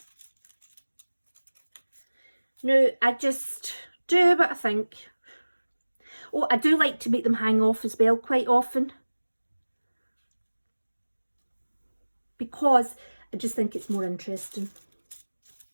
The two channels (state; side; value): inverted; both; correlation -1.00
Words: now I just do what I think. Oh, I do like to make them hang off as well quite often, because I just think it's more interesting.